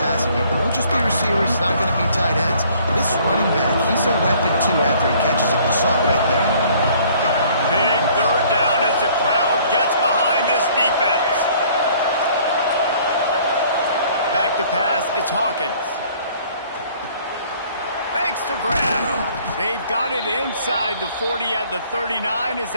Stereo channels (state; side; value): inverted; both; correlation -0.57